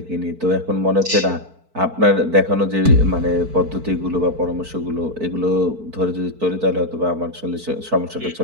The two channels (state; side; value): late; left; 4.5 ms